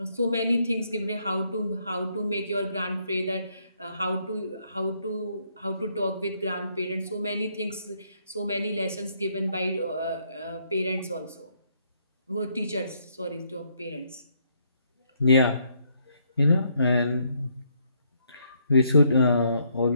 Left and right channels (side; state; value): both; inverted; correlation -0.72